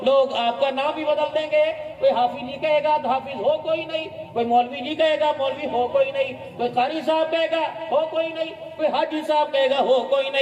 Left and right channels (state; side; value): identical; both; correlation 1.00